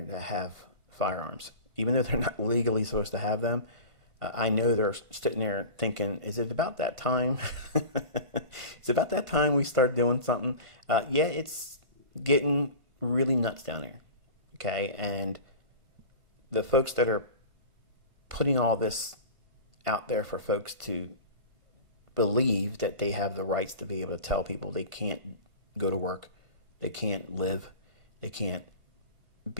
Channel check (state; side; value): late; left; 1.5 ms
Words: that have firearms. Even though they're not legally supposed to have them, I know they're sitting there thinking, is it about that time? Is it about that time we start doing something? Yeah, it's getting really nuts down there. Okay? And the folks that are putting all this out there for folks to believe that they have the rights to be able to tell people they can't go to work, they can't live, they can't